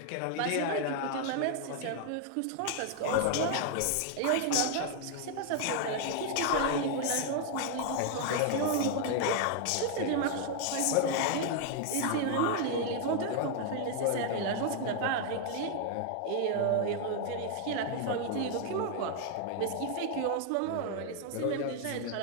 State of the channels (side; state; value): both; different; correlation 0.00